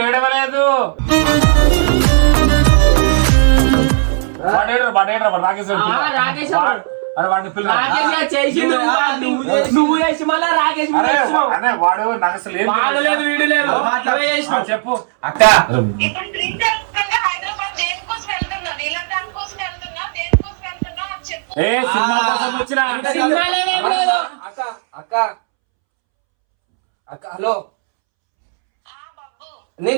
రాకేష్ రాకేష్ అరే వాడిని పిల్ల రాకేష్ చేసి నువ్వు చేసి మళ్ళా రాకేష్ వాడు నాకు అసలు ఏం లేదు, వీడు లేదు. చెప్పు అక్క. ఇప్పుడు డ్రీమ్ హైదరాబాద్ దేనికోసం వెళ్తున్నా? నీళ్ళ దానికోసం వెళ్తున్నా? దేనికోసం వెళ్తున్నా అని చెప్పు. ఏ సినిమా కోసం వచ్చిన సినిమాలేం లేదు. అక్క అక్క అక్క హలో, బాబు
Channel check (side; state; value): left; silent; 70 dB below the other